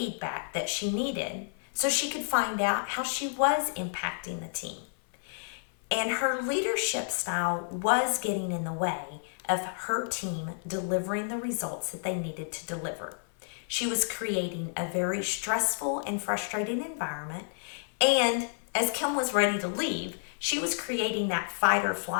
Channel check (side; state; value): right; silent; 58 dB below the other